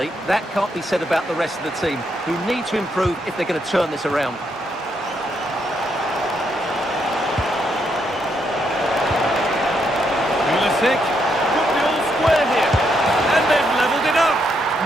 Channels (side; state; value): both; normal; correlation 0.77